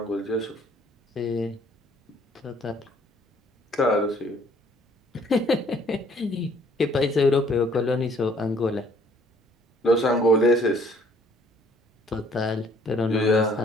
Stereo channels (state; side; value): normal; both; correlation 0.60